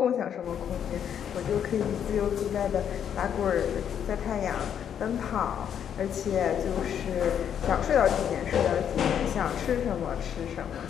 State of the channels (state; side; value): quieter; right; 8.8 dB